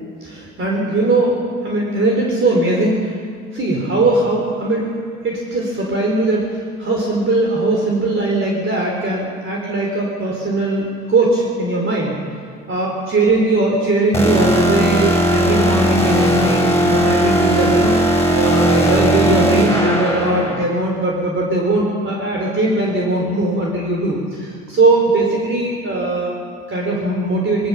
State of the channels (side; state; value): both; normal; correlation 0.43